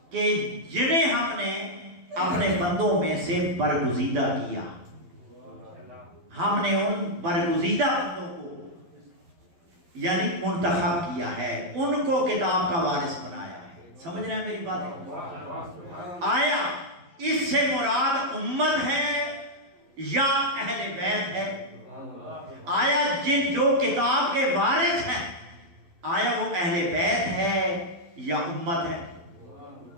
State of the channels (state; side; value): late; left; 11 ms